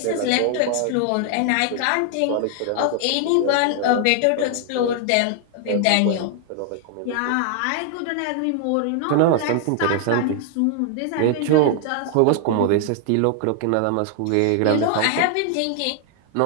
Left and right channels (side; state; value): both; different; correlation 0.00